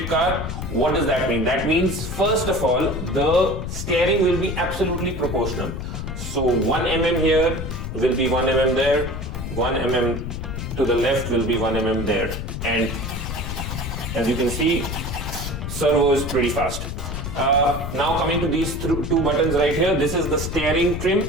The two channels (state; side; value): noise; left; rumble, 5 dB below the sound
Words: car. What does that mean? That means first of all, the steering will be absolutely proportional. So 1 mm here will be 1 mm there, 1 mm to the left will be 1 mm there. And as you can see, servo is pretty fast. Now coming to these two buttons right here, this is the steering trim,